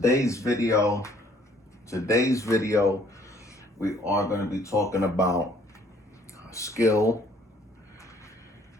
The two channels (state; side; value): normal; both; correlation 0.61